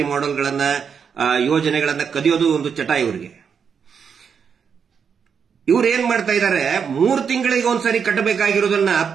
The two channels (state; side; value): quieter; left; 6.7 dB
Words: ಮಾಡೆಲ್ಗಳನ್ನ, ಯೋಜನೆಗಳನ್ನ ಕದಿಯೋದು ಒಂದು ಚಟ ಇವರಿಗೆ. ಇವ್ರು ಏನ್ ಮಾಡ್ತಾ ಇದ್ದಾರೆ, 3 ತಿಂಗಳಿಗೆ ಒಂದ್ಸರಿ ಕಟ್ಟಬೇಕಾಗಿರೋದನ್ನ